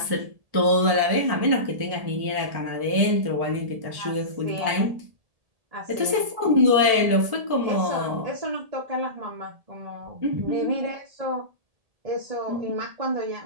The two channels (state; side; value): late; left; 1.7 ms